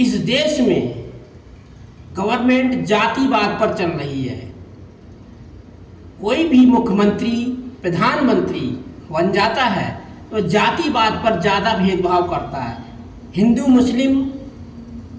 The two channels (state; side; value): identical; both; correlation 1.00